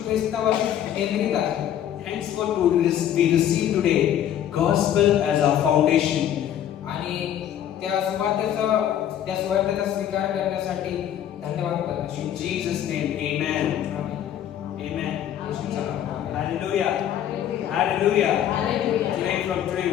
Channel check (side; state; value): right; quieter; 10.6 dB